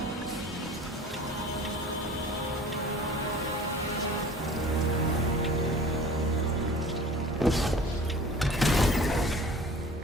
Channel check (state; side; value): normal; both; correlation 0.43